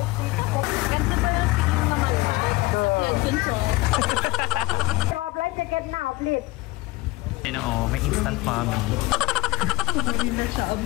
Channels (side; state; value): right; quieter; 21.5 dB